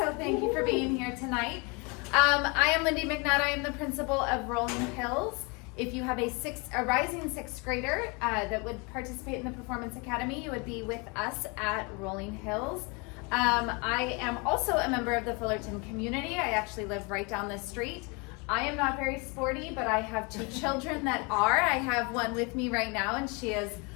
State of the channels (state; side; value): quieter; right; 30.2 dB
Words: thank you for being here tonight. I am Lindy McNutt. I am the principal of Rolling Hills. If you have a rising 6th grader that would participate in the Performance Academy, you would be with us at Rolling Hills. I am also a member of the Fullerton community. I actually live right down the street. I am not very sporty, but I have 2 children that are. I have one with me right now, and she is